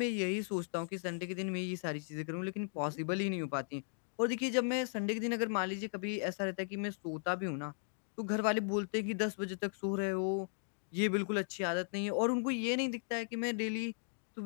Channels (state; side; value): silent; right; digital silence